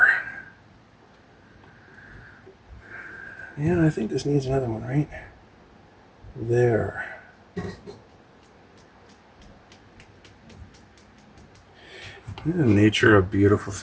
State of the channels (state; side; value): identical; both; correlation 1.00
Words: Yeah, I think this needs another one, right? There. Isn't nature a beautiful